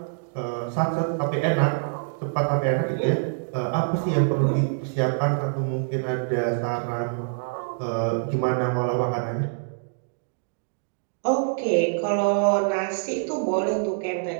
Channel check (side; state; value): left; silent; digital silence